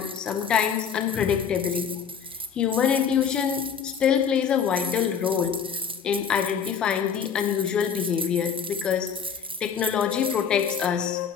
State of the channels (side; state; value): right; quieter; 7.2 dB